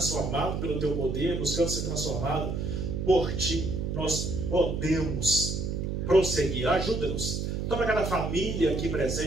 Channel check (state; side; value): noise; right; hum, 2 dB below the sound